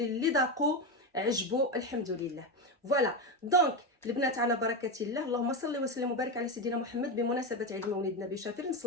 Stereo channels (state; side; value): normal; both; correlation 0.14